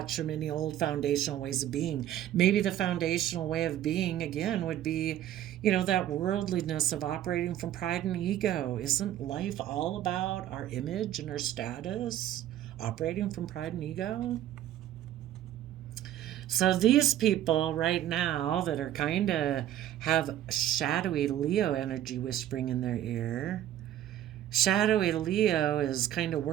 from any old foundational ways of being. Maybe the foundational way of being, again, would be, that worldliness of operating from pride and ego. Isn't life all about our image and our status? Operating from pride and ego? So these people right now that are kind of have shadowy Leo energy whispering in their ear, shadowy Leo is kind of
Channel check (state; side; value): quieter; left; 12.1 dB